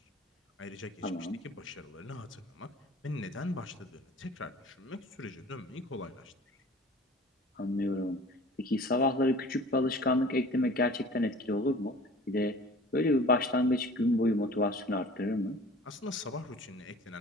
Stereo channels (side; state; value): both; normal; correlation 0.44